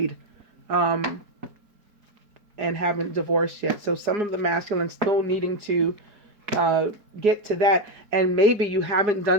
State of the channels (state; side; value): late; left; 4.9 ms